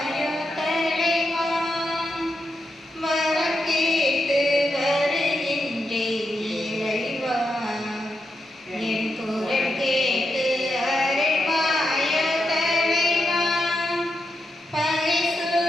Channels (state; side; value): normal; both; correlation 0.85